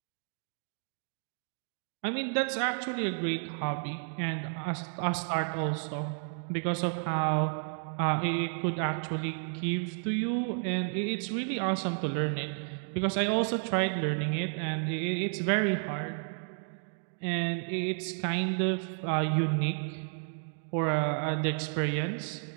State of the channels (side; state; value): left; silent; 57 dB below the other